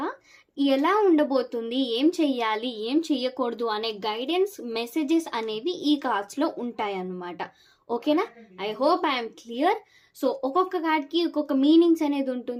ఎలా ఉండబోతుంది, ఏం చెయ్యాలి, ఏం చెయ్యకూడదు అనే గైడెన్స్ మెసేజెస్ అనేవి ఈ కార్డ్స్లో ఉంటాయి అన్నమాట. ఓకేనా? I hope I'm clear. So ఒక్కొక్క కార్డ్కి ఒక్కొక్క మీనింగ్స్ అనేది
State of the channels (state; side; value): identical; both; correlation 1.00